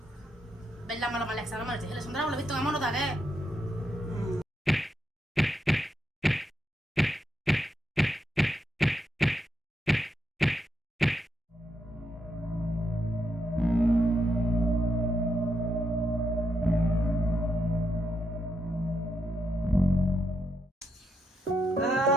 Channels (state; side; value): normal; both; correlation 0.81